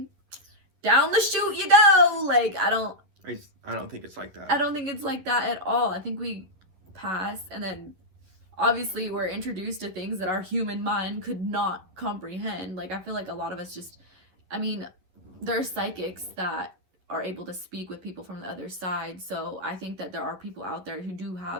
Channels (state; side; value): late; left; 11 ms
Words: down the chute you go. Like I don't think it's like that. I don't think it's like that at all. I think we pass, and then obviously we're introduced to things that our human mind could not comprehend. Like I feel like a lot of us just, there are psychics that are able to speak with people from the other side. So I think that there are people out there who do